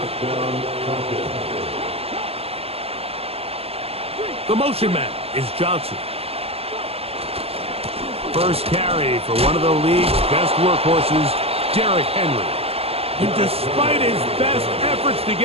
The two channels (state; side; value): late; left; 0.29 ms